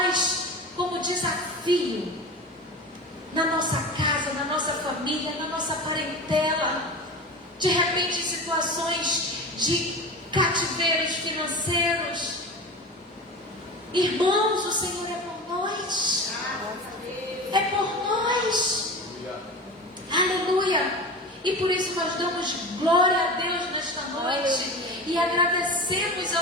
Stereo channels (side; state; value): both; normal; correlation 0.31